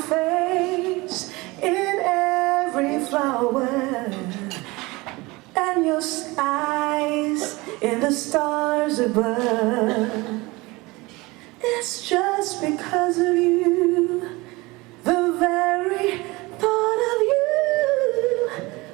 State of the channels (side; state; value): left; quieter; 22.9 dB